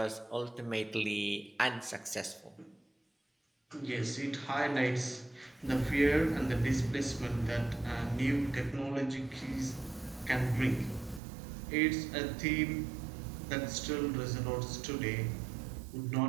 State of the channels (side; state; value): left; drops out; at 11.2 s